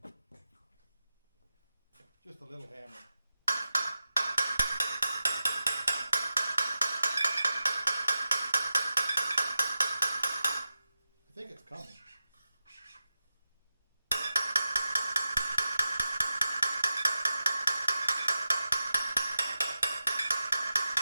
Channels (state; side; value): inverted; both; correlation -0.92